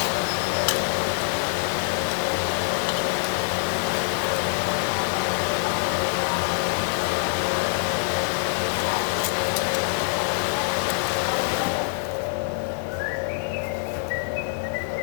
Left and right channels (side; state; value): right; silent; 62 dB below the other